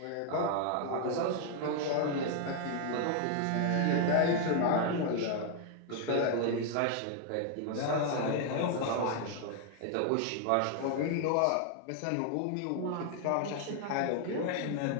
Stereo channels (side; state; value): both; different; correlation 0.00